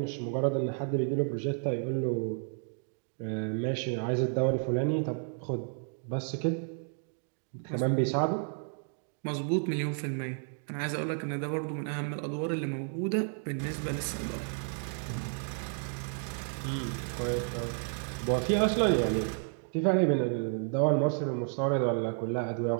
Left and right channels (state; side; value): silent; left; 57 dB below the other